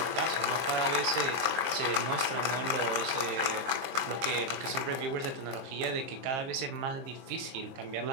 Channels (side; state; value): left; late; 23 ms